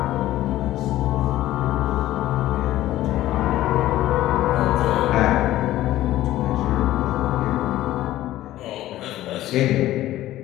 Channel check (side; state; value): right; quieter; 14.7 dB